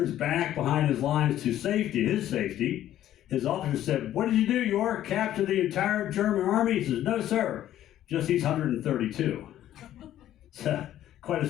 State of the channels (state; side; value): quieter; right; 12.3 dB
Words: back behind his lines to safety, his officer said, "What did you do, York? Capture the entire German army?" He says, "No, sir, just these 132. So, quite a